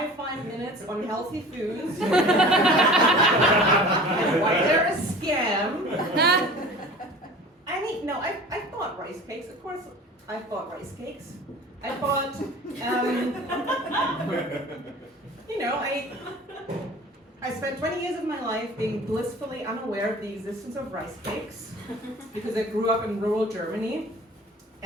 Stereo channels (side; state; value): both; normal; correlation 0.41